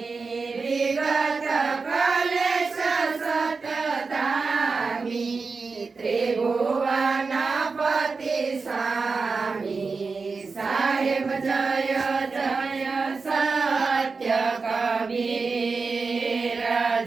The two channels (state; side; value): quieter; left; 4.5 dB